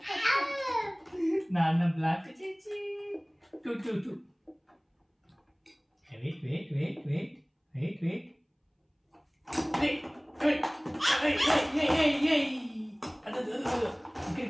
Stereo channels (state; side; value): identical; both; correlation 1.00